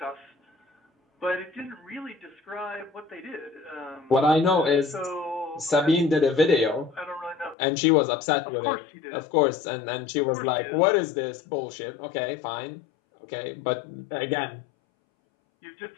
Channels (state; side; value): drops out; right; at 7.6 s